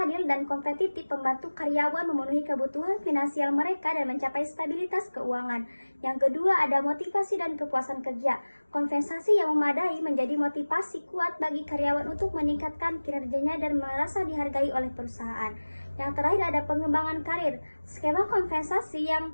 dan kompetitif membantu karyawan memenuhi kebutuhan finansial mereka dan mencapai stabilitas keuangan. Yang kedua ada motivasi dan kepuasan kerja. Kompensasi yang memadai menjadi motivasi kuat bagi karyawan untuk meningkatkan kinerjanya dan merasa dihargai oleh perusahaan. Yang terakhir ada pengembangan karir. Skema kompensasi yang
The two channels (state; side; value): inverted; both; correlation -1.00